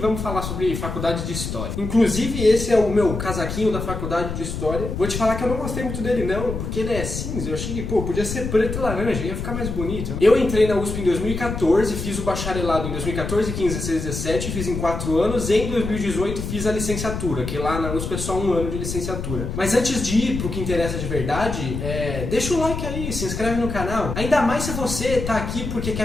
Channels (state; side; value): noise; left; rumble, 5 dB below the sound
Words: falar sobre faculdade de História. Inclusive, esse é o meu casaquinho da faculdade de História. Vou te falar que eu não gostei muito dele não, porque ele é cinza. Eu achei que, podia ser preto e laranja, ia ficar mais bonito. Eu entrei na USP em 2014, fiz o bacharelado em 2014, 15, 16, 17, fiz em 4 anos. E em 2018 fiz a licenciatura, que lá na USP é só 1 ano de licenciatura. Mas antes de ir pro que interessa de verdade, deixa o like aí, se inscreve no canal. Ainda mais se você tá aqui porque